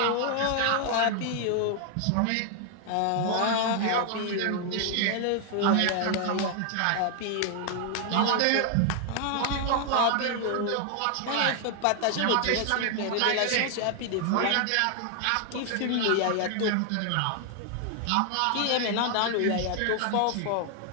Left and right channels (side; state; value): both; different; correlation 0.00